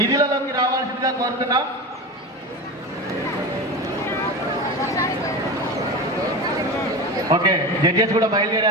రావాల్సిందిగా కోరుతున్నాం. ఓకే, జడ్జెస్ కూడా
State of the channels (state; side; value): normal; both; correlation 0.25